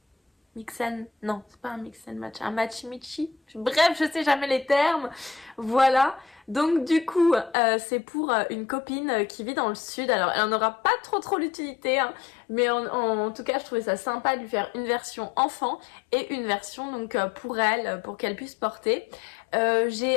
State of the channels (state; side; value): drops out; right; at 7.6 s